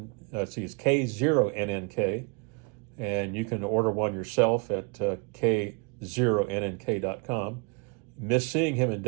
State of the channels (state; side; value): quieter; left; 34.8 dB